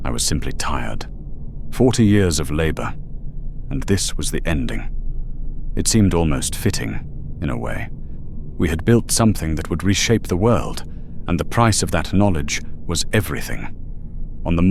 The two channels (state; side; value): identical; both; correlation 1.00